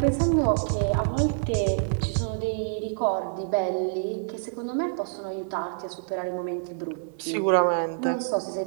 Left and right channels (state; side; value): silent; left; 60 dB below the other